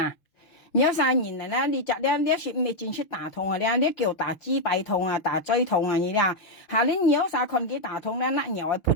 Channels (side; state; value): right; late; 6.0 ms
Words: 你有3年啦，你只咧，你說未進出打痛啊，你叫打支臂痛啊，打椎痛啊，你啲下年你有啥看佢打痛咧，那又係潑